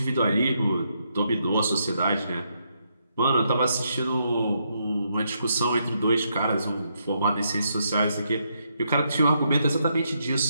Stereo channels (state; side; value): inverted; both; correlation -0.78